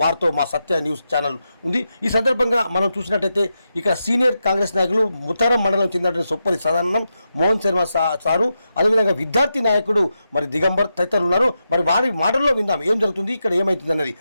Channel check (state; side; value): inverted; both; correlation -0.87